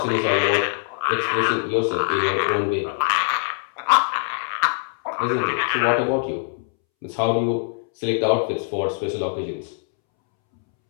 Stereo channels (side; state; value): right; silent; 64 dB below the other